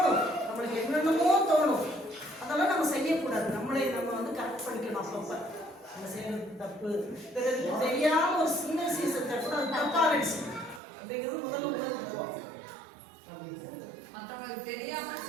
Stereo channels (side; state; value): left; drops out; at 10.8 s